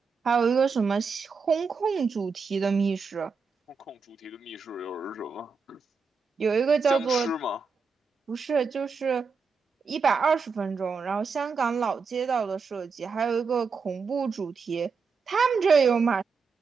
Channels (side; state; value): left; quieter; 5.1 dB